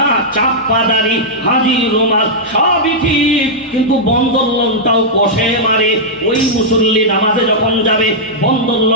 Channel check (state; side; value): normal; both; correlation -0.09